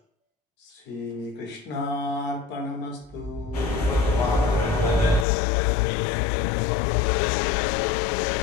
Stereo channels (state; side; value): drops out; right; at 5.2 s